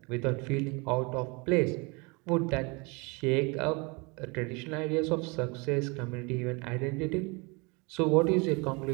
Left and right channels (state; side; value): quieter; left; 28.7 dB